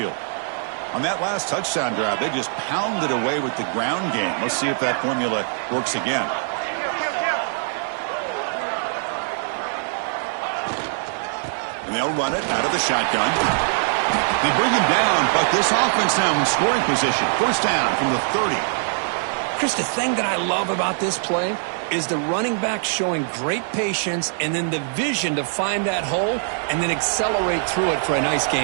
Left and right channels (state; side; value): silent; left; 61 dB below the other